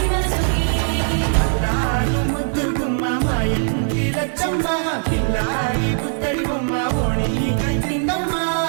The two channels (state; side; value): silent; left; 66 dB below the other